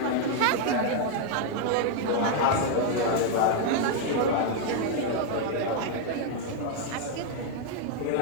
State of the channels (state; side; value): different; both; correlation 0.00